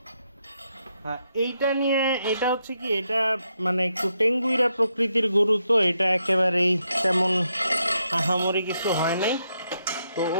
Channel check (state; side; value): inverted; both; correlation -0.80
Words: এইটা নিয়ে, এটা হচ্ছে কি, এটা মানে একটু টেঙ্গুইরা প্রকৃতির গরু, তো এটা একেবারেই তেমন আহামরি কিছু হয় নাই। তো